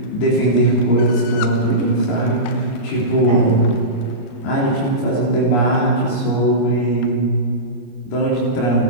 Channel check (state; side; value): late; right; 25 ms